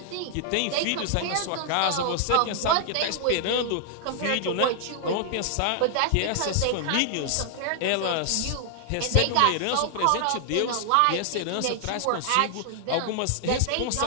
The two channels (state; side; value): different; both; correlation 0.00